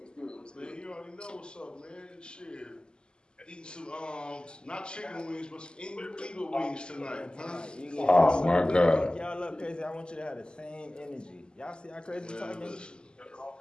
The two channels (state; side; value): late; right; 0.048 ms